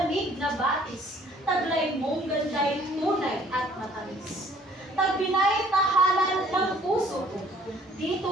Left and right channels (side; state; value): both; normal; correlation 0.58